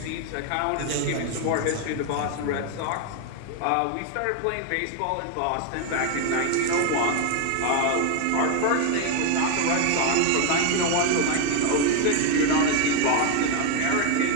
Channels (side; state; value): both; different; correlation 0.01